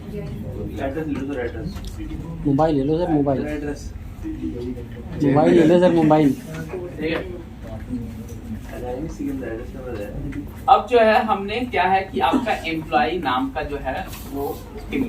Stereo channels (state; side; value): identical; both; correlation 1.00